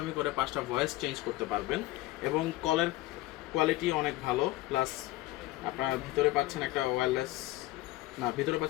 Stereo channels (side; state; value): right; quieter; 17.8 dB